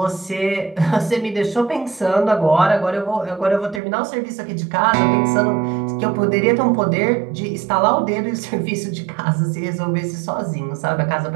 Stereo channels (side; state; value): left; drops out; at 3.8 s